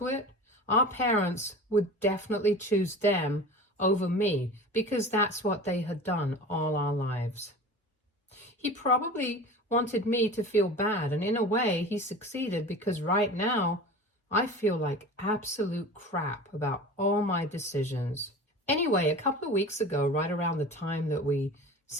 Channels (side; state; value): both; normal; correlation 0.36